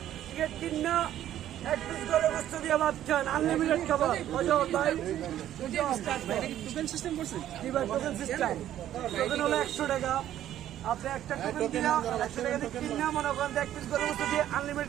টিকিট কিনা 1 পিস করে বস্তু দিয়ে ভাত খান আনলিমিটেড খাবার। টোকেন সিস্টেম করছেন টোকেন সিস্টেম। টোকেন হলো 100 টাকা। আপনি একটা টোকেন দিয়ে 100 টাকা দিয়ে কিনে মনে করেন 1 পিস করে বস্তু দিয়ে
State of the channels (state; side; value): quieter; left; 11.9 dB